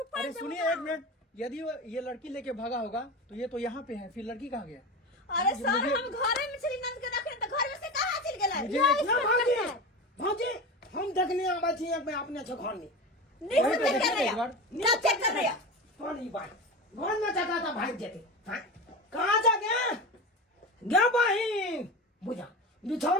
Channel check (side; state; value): both; normal; correlation 0.26